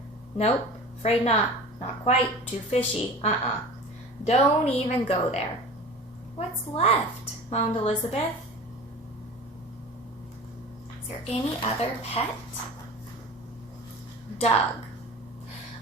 Nope, afraid not. Not quite, too fishy. Don't even go there. What's left? Moaned Elizabeth. Is there any other pet? Doug.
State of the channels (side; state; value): both; normal; correlation 0.38